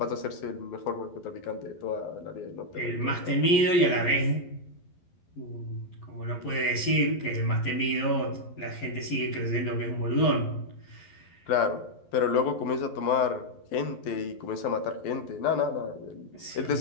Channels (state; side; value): late; right; 11 ms